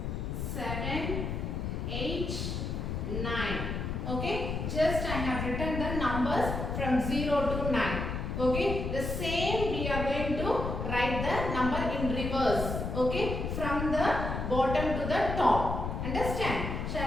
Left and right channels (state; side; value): noise; left; rumble, 3 dB below the sound